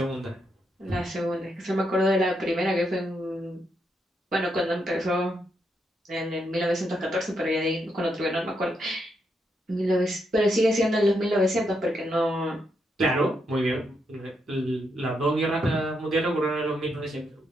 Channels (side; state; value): both; normal; correlation 0.80